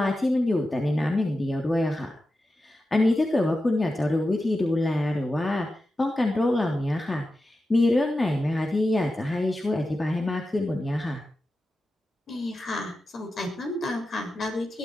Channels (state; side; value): normal; both; correlation 0.92